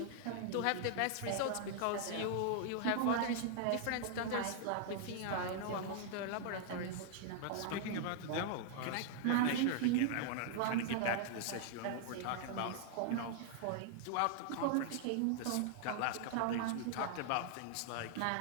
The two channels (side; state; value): both; different; correlation -0.01